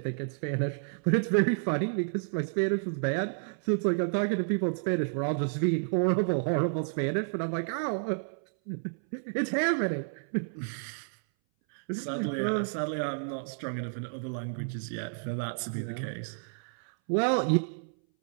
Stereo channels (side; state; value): left; silent; 57 dB below the other